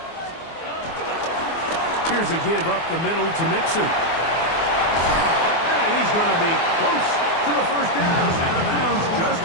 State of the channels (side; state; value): right; late; 24 ms